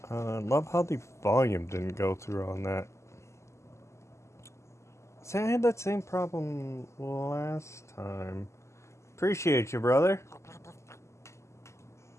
Love how the volume didn't go through on that. See, I had that same problem last time. Appreciate you, brother.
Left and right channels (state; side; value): late; right; 0.13 ms